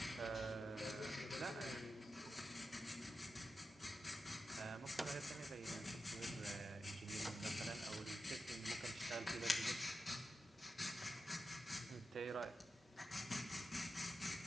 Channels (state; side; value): normal; both; correlation 0.90